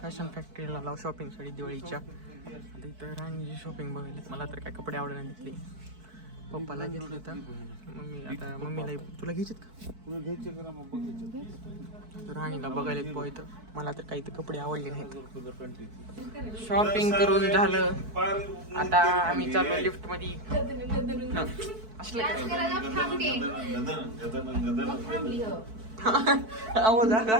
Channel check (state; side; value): late; left; 4.6 ms